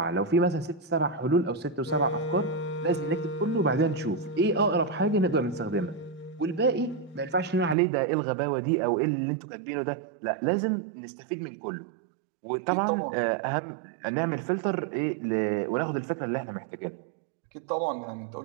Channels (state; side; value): drops out; left; at 7.8 s